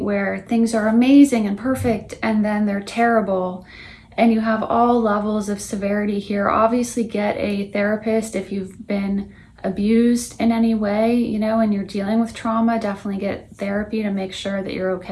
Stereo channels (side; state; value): both; identical; correlation 1.00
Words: things are amazing and perfect, and then they're terrible. And you have all levels of severity here. Obviously, get a therapist if you've been abused in any way, and you're dealing with trauma. Definitely get therapy to make sure that you're